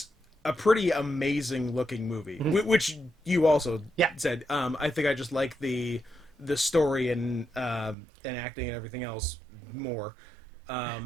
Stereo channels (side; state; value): left; drops out; at 8.0 s